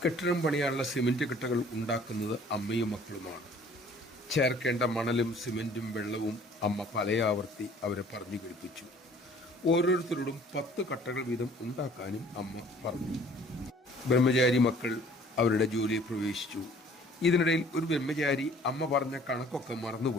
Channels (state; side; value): normal; both; correlation 0.54